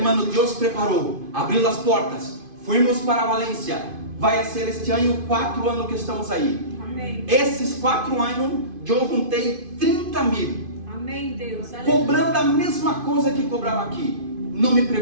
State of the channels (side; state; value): left; late; 2.5 ms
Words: Deus preparou, abriu as portas, fomos para Valência. Vai ser este ano 4 anos que estamos aí. Amém. Esses 4 anos, eu juntei 30 mil, Amém, Deus. Aleluia. cobrando a mesma coisa que cobrava aqui. Não me